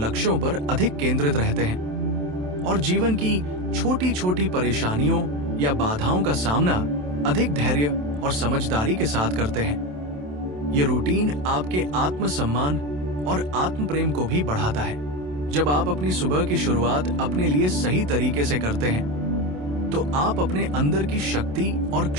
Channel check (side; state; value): left; late; 27 ms